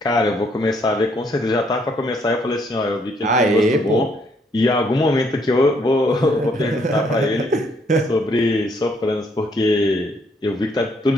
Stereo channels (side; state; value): both; normal; correlation 0.69